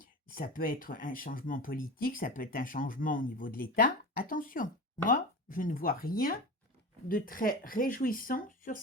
ça peut être un changement politique, ça peut être un changement au niveau de l'État. Attention, moi, je ne vois rien de très réjouissant sur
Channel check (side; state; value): both; normal; correlation 0.29